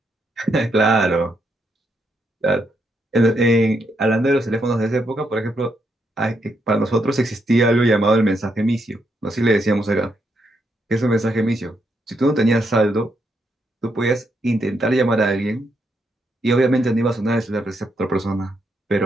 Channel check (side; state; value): both; normal; correlation 0.78